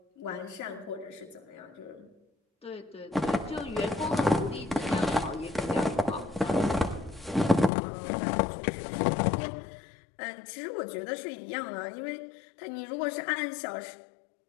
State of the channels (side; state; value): right; drops out; at 7.7 s